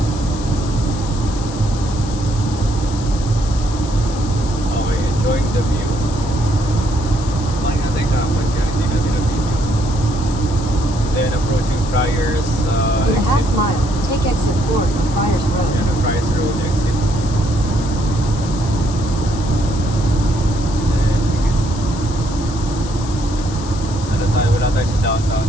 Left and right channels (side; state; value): left; noise; hiss, 14 dB below the sound